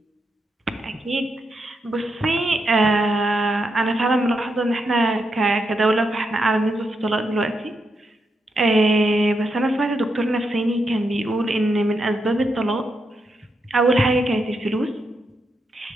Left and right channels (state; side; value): normal; both; correlation 0.83